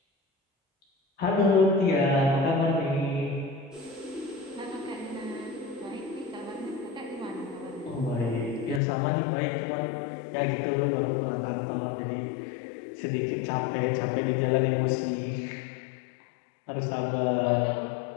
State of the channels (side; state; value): right; drops out; at 8.8 s